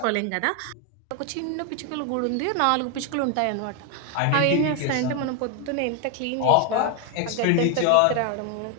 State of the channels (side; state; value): both; different; correlation 0.01